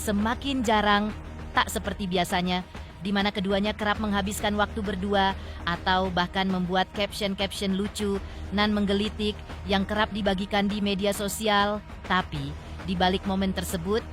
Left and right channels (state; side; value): identical; both; correlation 1.00